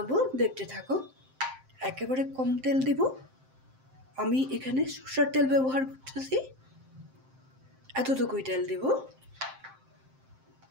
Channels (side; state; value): left; late; 7.6 ms